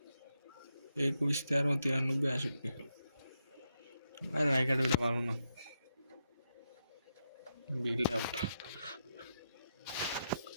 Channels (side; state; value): both; inverted; correlation -0.83